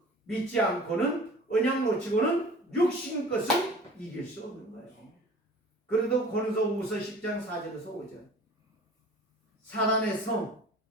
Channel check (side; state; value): both; normal; correlation 0.44